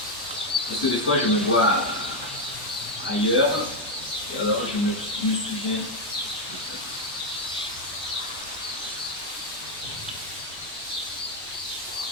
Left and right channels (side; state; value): both; normal; correlation 0.04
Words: parce que des fois je me vois ailleurs, et alors je me souviens.